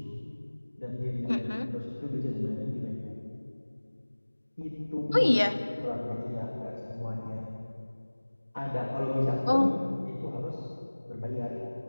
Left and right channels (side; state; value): both; inverted; correlation -1.00